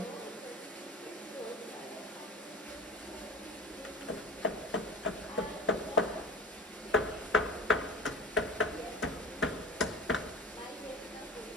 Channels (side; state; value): both; normal; correlation 0.34